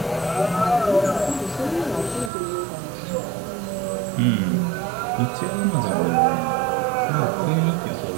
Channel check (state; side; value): drops out; left; at 2.3 s